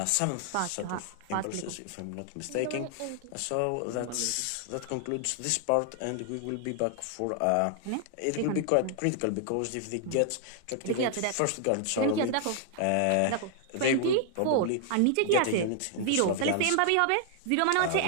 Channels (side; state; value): both; different; correlation 0.00